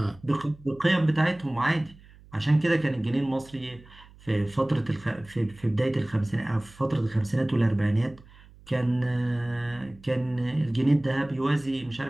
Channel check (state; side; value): noise; right; hum, 23 dB below the sound